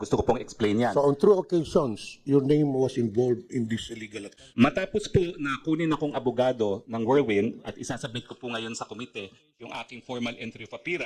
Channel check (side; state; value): both; identical; correlation 1.00